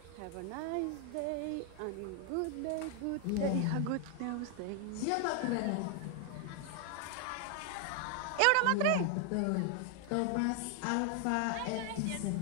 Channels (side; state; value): both; different; correlation 0.00